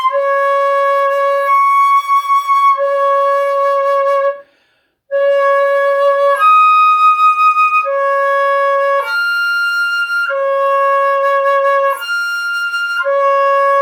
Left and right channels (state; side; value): identical; both; correlation 1.00